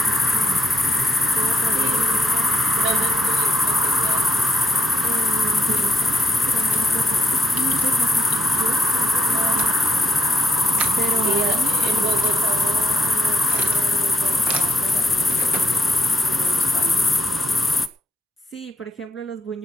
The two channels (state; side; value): normal; both; correlation 0.76